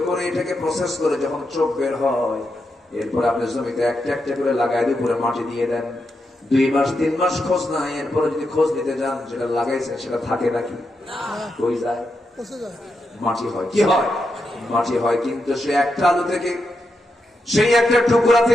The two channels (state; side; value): normal; both; correlation 0.85